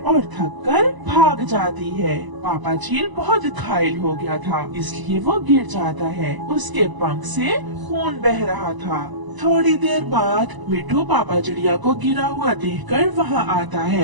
थक कर भाग जाती है। पापा चील बहुत घायल हो गया था, इसलिए वो गिर जाता है। उसके पंख से खून बह रहा था। थोड़ी देर बाद मिठू पापा चिड़िया को गिरा हुआ देखकर वहाँ आता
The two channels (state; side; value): late; left; 1.0 ms